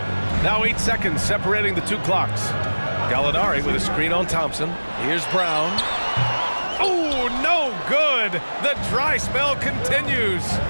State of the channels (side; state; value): both; inverted; correlation -1.00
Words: Now 8 seconds separating the 2 clocks. Gallinari with a screen on Thompson. Here's Brown. Oh, no good. The dry spell continues.